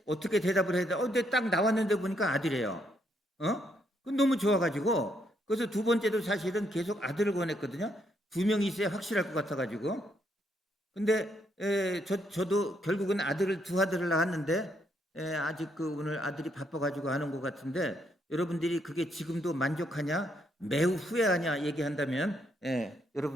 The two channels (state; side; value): normal; both; correlation 0.74